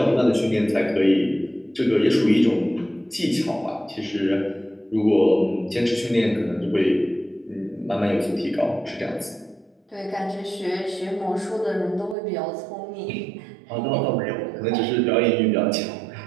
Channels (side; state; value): left; drops out; at 12.2 s